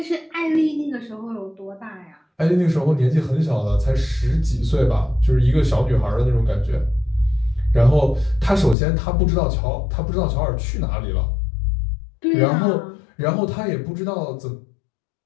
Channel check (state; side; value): drops out; right; at 8.8 s